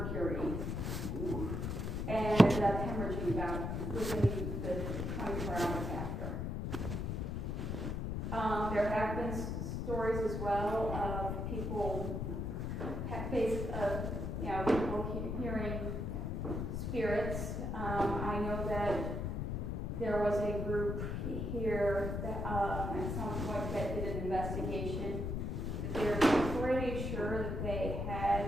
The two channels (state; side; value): noise; left; rumble, 2 dB below the sound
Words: Ooh. And ended up hemorrhaging about within the 24 hours after. There have been stories as well of people, people hearing spirits. I know that there was a group here that at some point that did an investigation. They're pretty sure